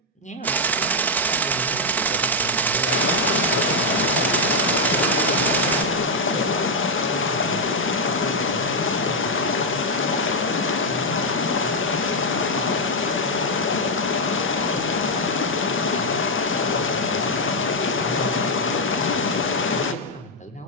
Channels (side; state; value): both; normal; correlation -0.01